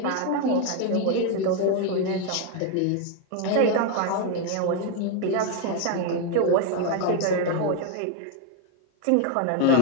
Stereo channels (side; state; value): both; different; correlation 0.01